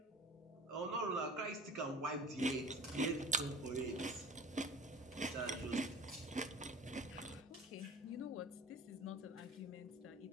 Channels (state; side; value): normal; both; correlation 0.40